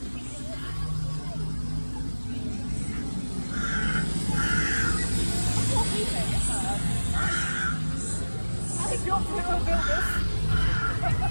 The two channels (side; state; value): both; inverted; correlation -1.00